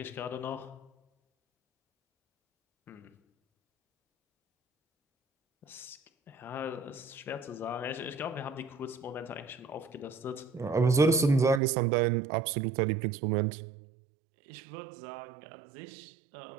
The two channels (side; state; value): left; drops out; at 11.6 s